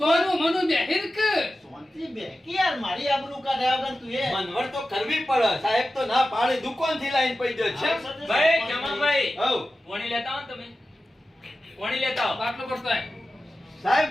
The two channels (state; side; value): normal; both; correlation 0.94